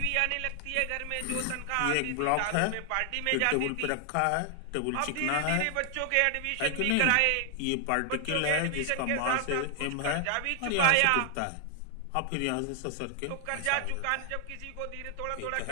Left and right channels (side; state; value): both; different; correlation 0.00